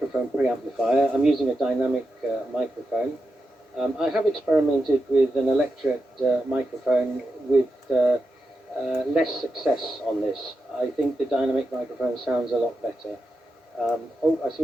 preamplifier. I'm using a dynamic microphone. I have experimented with an electret microphone with less success on this. I think the dynamic microphone sounds a lot better. Oh, I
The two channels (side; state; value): both; normal; correlation 0.88